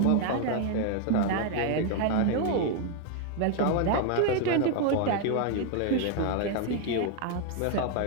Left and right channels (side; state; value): both; different; correlation 0.00